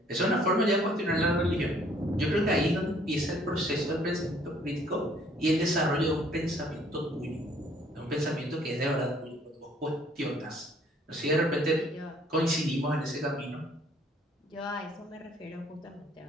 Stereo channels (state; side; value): normal; both; correlation 0.61